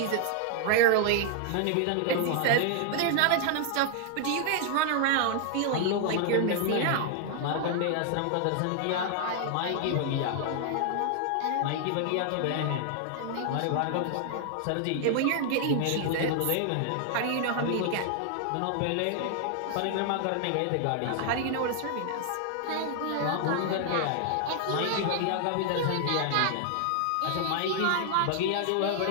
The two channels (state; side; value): different; both; correlation 0.00